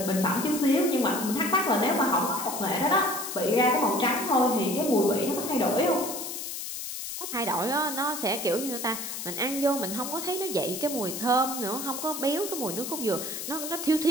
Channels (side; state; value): left; noise; hiss, 6 dB below the sound